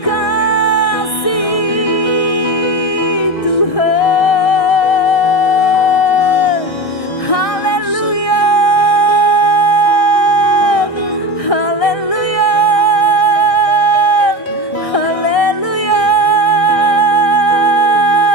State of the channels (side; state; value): right; late; 1.6 ms